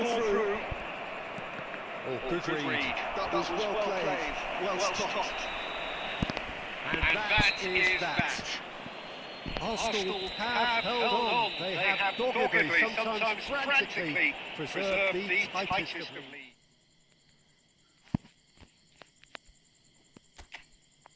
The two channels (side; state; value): both; identical; correlation 1.00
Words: through. Oh, good read. That was well played. Well stopped. And that is that. Arsenal have held on. They have doggedly, sometimes frantically, preserved the tightest of leads.